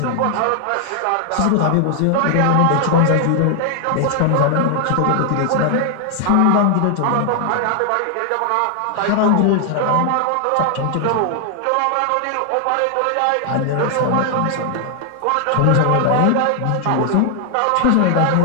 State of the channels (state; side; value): different; both; correlation 0.00